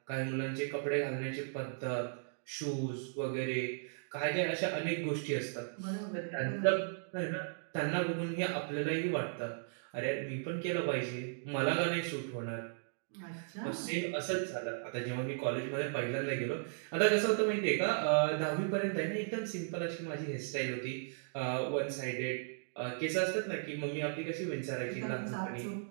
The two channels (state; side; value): silent; left; digital silence